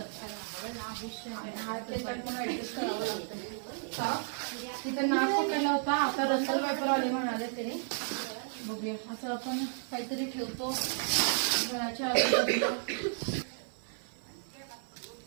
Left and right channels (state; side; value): silent; left; 56 dB below the other